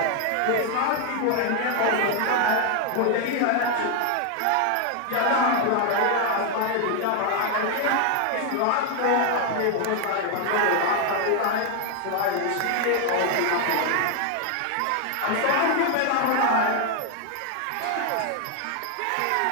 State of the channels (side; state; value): both; different; correlation 0.00